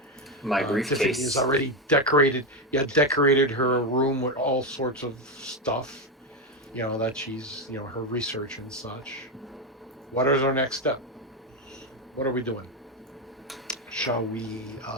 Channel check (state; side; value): normal; both; correlation 0.10